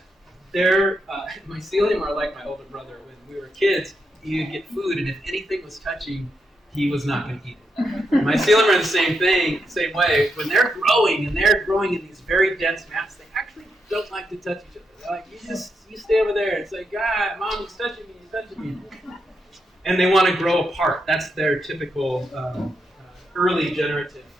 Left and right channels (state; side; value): normal; both; correlation 0.82